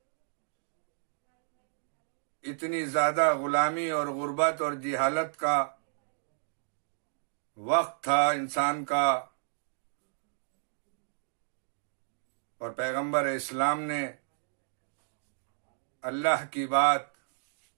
اتنی زیادہ غلامی اور غربت اور جہالت کا وقت تھا انسان کا، اور پیغمبر اسلام نے اللہ کی بات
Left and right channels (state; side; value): silent; left; digital silence